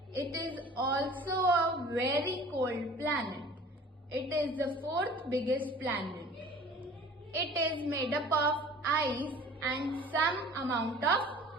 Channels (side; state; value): both; normal; correlation 0.46